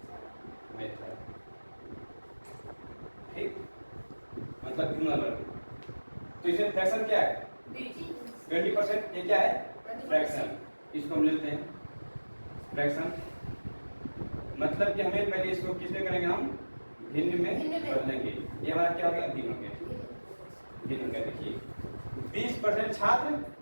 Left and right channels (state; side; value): inverted; both; correlation -1.00